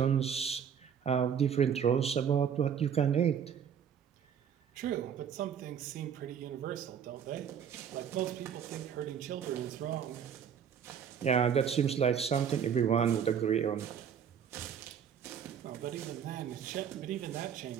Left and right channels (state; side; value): quieter; left; 8.0 dB